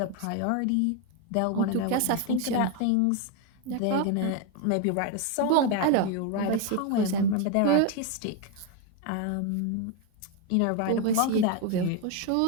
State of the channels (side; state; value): both; different; correlation 0.01